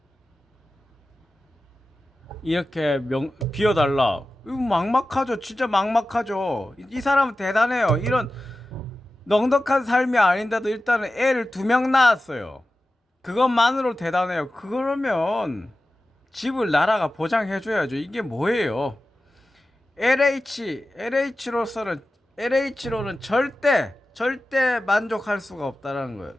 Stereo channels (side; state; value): both; normal; correlation 0.94